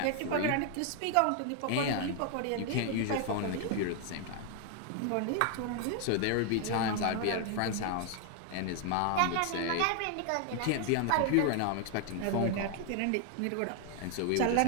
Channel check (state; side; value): different; both; correlation 0.00